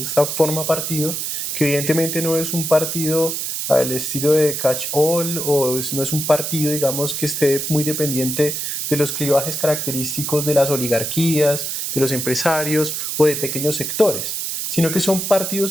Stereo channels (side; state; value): right; noise; hiss, 3 dB below the sound